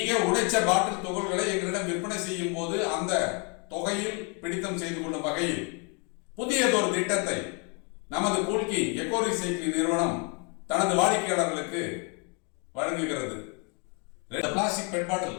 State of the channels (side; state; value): right; quieter; 35.0 dB